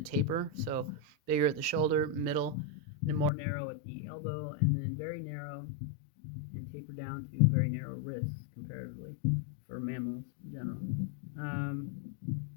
taper, so bigger at the shoulder, middle, and more narrow at the elbow, and then very narrow and taper down to very narrow wrists comparatively for mammals in general.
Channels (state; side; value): drops out; right; at 3.3 s